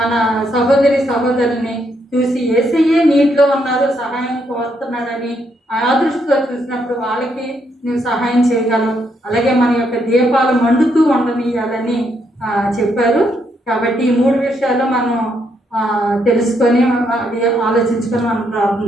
సహోదరుల్ని చూసి యేసయ్యే నీటిలో ఉన్నారు, సహాయం కోరుతున్నాడని ఆ దృష్టితో చూసినప్పుడు వాళ్ళకి నువ్వు సహాయం చేయగలవు. అలాగే మన యొక్క దీపాలు మండుతూ ఉండనియాలని చెప్పారు. కాబట్టి ఈ 3 విషయాలు మనం తెలుసుకొని అది ఆలోచించుకొని మనం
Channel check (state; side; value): normal; both; correlation 0.76